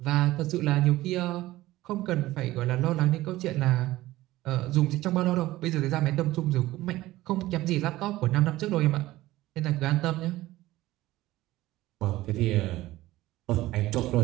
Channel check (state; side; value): quieter; left; 16.9 dB